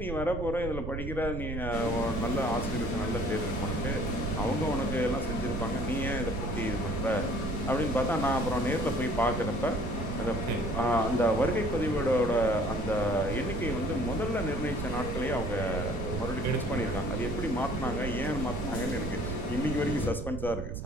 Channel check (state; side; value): noise; right; rumble, 6 dB below the sound